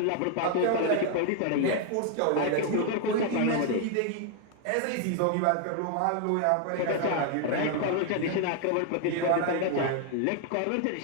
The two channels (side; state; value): both; different; correlation 0.00